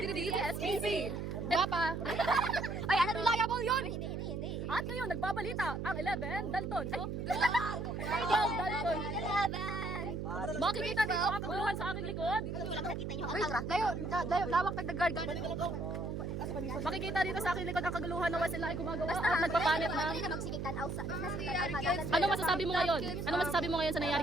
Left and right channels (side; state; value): right; noise; hum, 4 dB below the sound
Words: Guwapa. Ay, ano reliable yun? Hindi. At ngayon, nagbabalita ang 11 Dalton. Ay, 12 Dalton. Makikita dito ang kaguluhan sa aking likod. Layo, lawak nagdagard. Makikita dito sa aking likod ang kaguluhan na sila ay gumagawa at nagpapanit ng... Ano masasabi mo ngayon? Ano masasabi mo ngayon sa nangyari